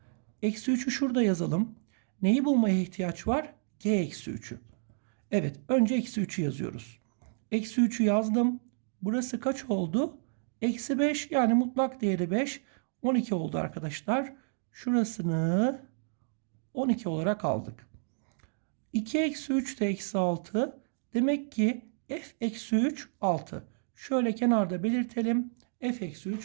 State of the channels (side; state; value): left; silent; digital silence